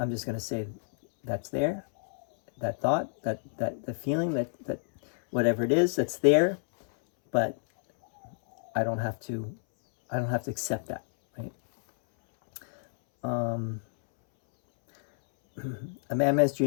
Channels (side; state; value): right; silent; 59 dB below the other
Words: just going to say that's there. That thought, that the feeling, that whatever it is, that's there. But I don't have to accept that, right? A madman's